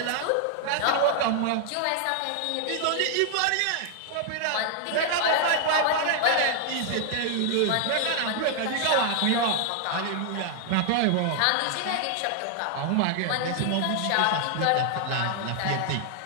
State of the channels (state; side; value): different; both; correlation 0.00